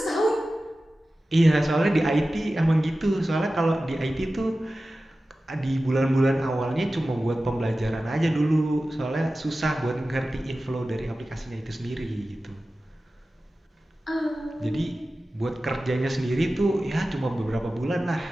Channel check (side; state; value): both; normal; correlation 0.95